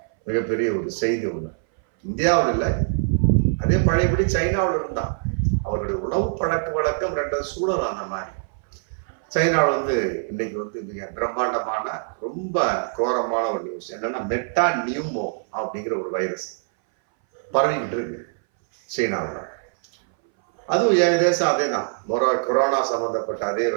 மிகப்பெரிய ஒரு செய்தி ஒன்று. இந்தியாவில் இல்லை, அதே பழையபடி சைனாவில் இருந்தான். அவருடைய உணவு பழக்க வழக்கம் 2 சூழல் அந்த மாதிரி. சைனாவில் இன்னைக்கு மிக பிரம்மாண்டமான ரொம்ப கோரமான ஒரு நியூஸ் என்னன்னா, மெட்டா நியூமோ அப்படிங்கிற ஒரு வைரஸ் பரவிக்கிட்டு இருக்கு சீனாவில். அதுவும் ஏகதேசம் அதே தான், கொரோனா சம்பந்தப்பட்ட அதே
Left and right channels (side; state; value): left; silent; 60 dB below the other